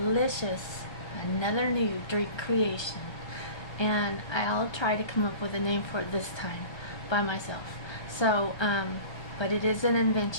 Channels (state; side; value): late; right; 1.3 ms